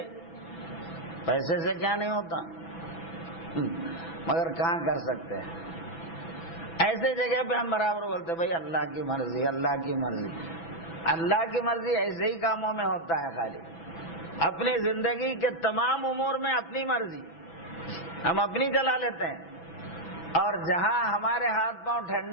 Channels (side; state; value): right; late; 6.0 ms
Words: پیسے سے کیا نہیں ہوتا، مگر کہاں کر سکتے ہیں؟ ایسے جگہ پہ ہم برابر بولتے بھائی اللہ کی مرضی، اللہ کی مرضی۔ اللہ کی مرضی ایسے ہی کاموں میں ہوتا ہے، خالی اپنی زندگی کے تمام امور میں اپنی مرضی ہم اپنی چلا لیتے ہیں، اور جہاں ہمارے ہاتھ پاؤں